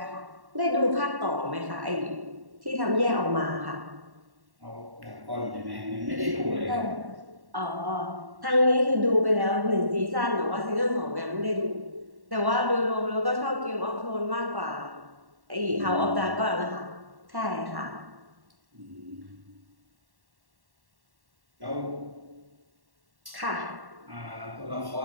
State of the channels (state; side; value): late; left; 1.1 ms